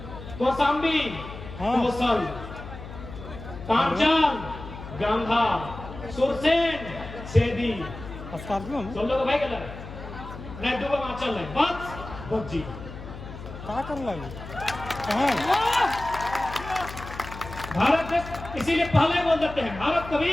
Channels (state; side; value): noise; left; hum, 12 dB below the sound